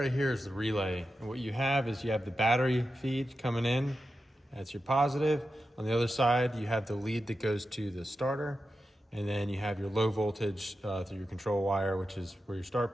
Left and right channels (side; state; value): both; normal; correlation 0.90